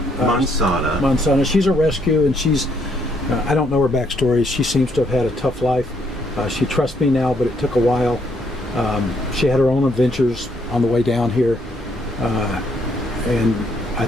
Mansana. She's a rescue, and she's I don't know her backstory. She seems to have had a tough life. She trusts me now, but it took a while. She had her own adventures on the way down here, and I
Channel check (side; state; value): both; normal; correlation 0.71